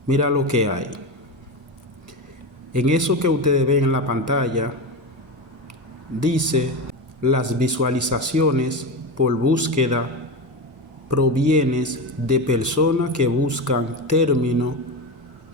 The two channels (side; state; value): both; normal; correlation 0.19